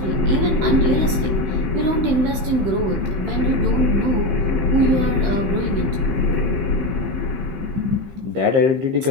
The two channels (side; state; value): left; late; 15 ms